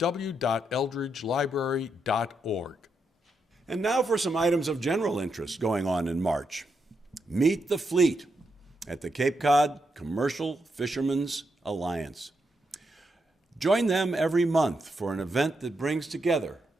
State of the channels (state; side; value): normal; both; correlation 0.82